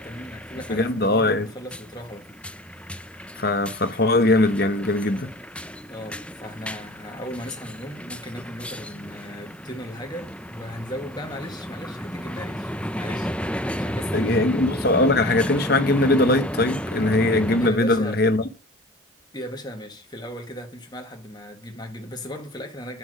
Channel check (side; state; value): both; normal; correlation 0.41